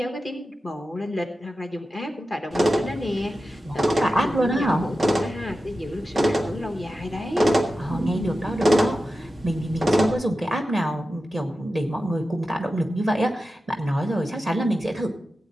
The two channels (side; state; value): both; normal; correlation 0.93